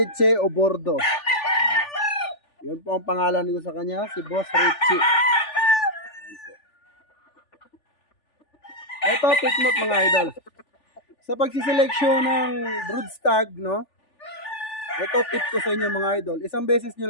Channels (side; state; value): right; late; 3.4 ms